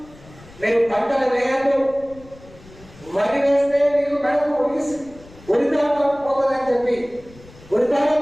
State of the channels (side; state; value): left; noise; rumble, 22 dB below the sound